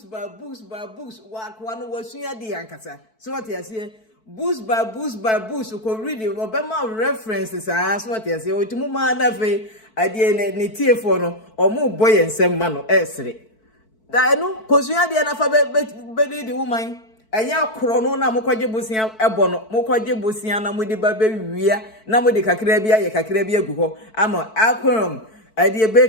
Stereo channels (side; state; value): right; late; 4.6 ms